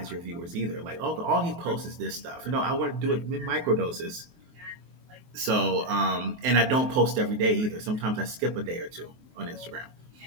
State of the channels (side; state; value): left; late; 23 ms